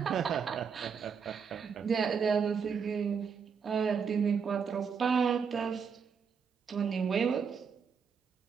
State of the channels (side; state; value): left; quieter; 6.3 dB